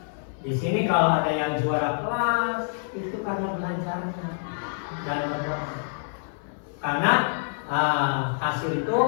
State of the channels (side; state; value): right; silent; 61 dB below the other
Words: di sini kalau ada yang juara kelas itu karena belajarnya dan berdoa. Karena hasil itu